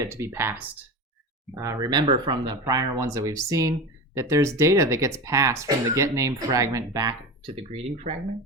to be passed. Remember from the prior ones that we've seen that there's data that gets passed from the GetName fragment back to the greeting fragment.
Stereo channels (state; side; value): normal; both; correlation 0.27